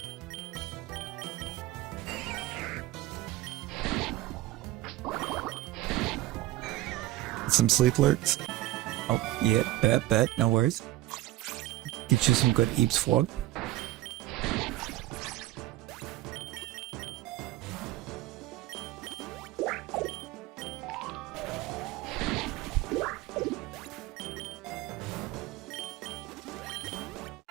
Some sleep lurks. Oh, yeah, bet, no worries. Get you some good Eeps Flog.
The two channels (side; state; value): left; quieter; 16.0 dB